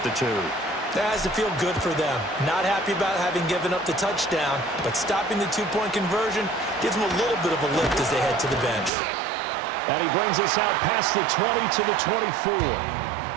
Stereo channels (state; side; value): drops out; left; at 8.9 s